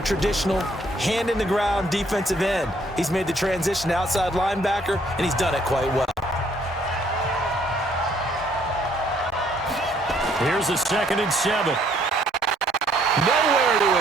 traditional hand-in-the-ground defensive end. He's made the transition to outside linebacker, and he's done it quite well. Here's a 2nd and 7. Nowhere to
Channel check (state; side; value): normal; both; correlation 0.65